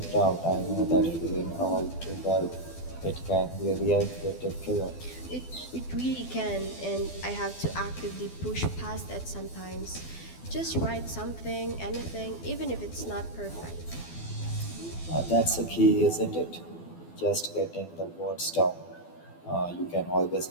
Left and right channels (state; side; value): late; right; 12 ms